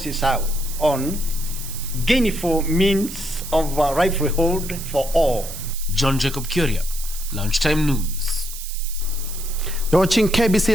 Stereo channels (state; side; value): noise; right; hiss, 10 dB below the sound